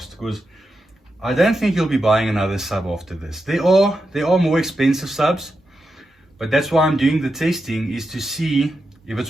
because I don't think you'll be buying another sub after this. There are more expensive subs, but that's why I'm doing the testing, is to see if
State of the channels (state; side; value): normal; both; correlation 0.87